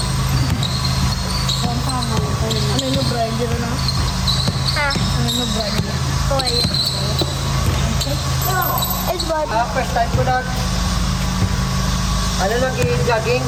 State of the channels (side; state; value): both; identical; correlation 1.00